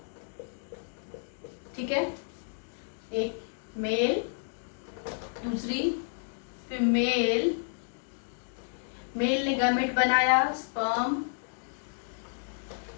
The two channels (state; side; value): silent; right; digital silence